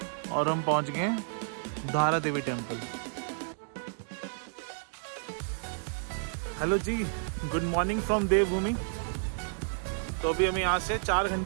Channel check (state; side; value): silent; left; digital silence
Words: और हम पहुंच गए Dhara Devi temple. Hello ji, good morning from Devbhoomi. तो अभी हमें यहाँ से 4